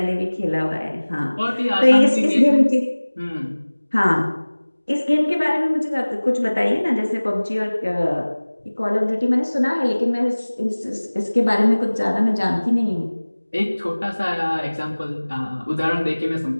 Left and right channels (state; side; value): inverted; both; correlation -1.00